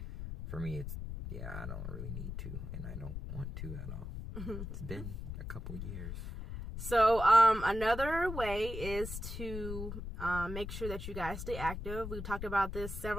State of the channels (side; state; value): left; noise; rumble, 7 dB below the sound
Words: for me, it's I don't really need to, and I don't want to at all. It's been a couple years. So, another way is to make sure that you guys stay active. We've talked about this